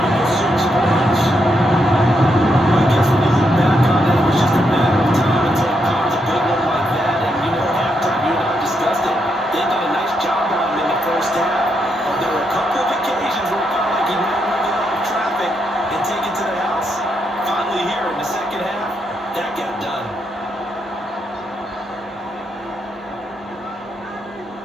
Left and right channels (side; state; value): both; normal; correlation 0.80